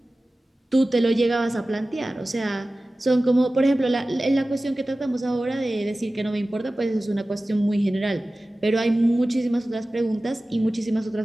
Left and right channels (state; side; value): normal; both; correlation 0.96